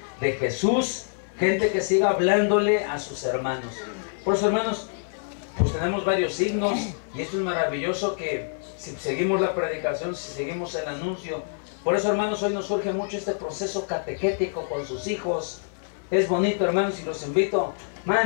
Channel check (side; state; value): right; silent; 61 dB below the other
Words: de Jesús. Gente que siga hablándole a sus hermanos. Por eso, hermanos, pues tenemos varios signos. Y esto es maravilloso que si seguimos la predicación, si seguimos el anuncio. Por eso, hermanos, hoy nos surge mucho este proceso catequético con sus hijos. Es bonito, hermanos, y los invito,